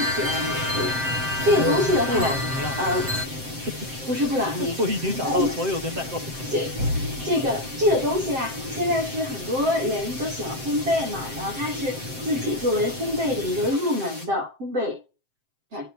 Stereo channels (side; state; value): left; late; 7.7 ms